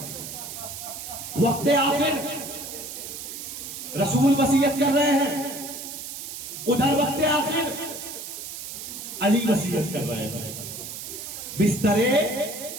وقت آخر رسول وصیت کر رہے ہیں، ادھر وقت آخر علی وصیت کر رہے ہیں. بستر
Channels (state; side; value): noise; right; hiss, 9 dB below the sound